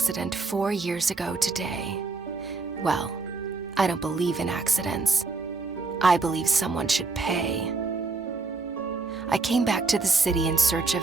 4 years ago today. Well, I don't believe in accidents. I believe someone should pay. I came back to the city in search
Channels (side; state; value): left; quieter; 3.9 dB